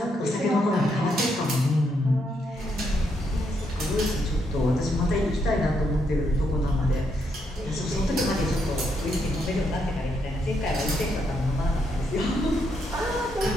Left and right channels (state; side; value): normal; both; correlation 0.77